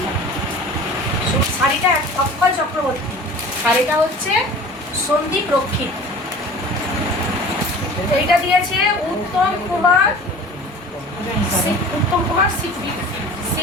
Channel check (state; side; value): normal; both; correlation 0.41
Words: শাড়িটা অক্ষয় চক্রবর্তী, আর এটা হচ্ছে সন্দীপ রক্ষী। এইটা দিয়েছে উত্তম কুমার সিল,